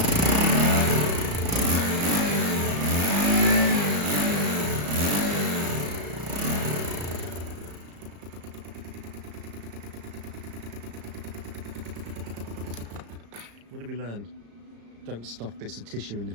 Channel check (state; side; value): late; left; 34 ms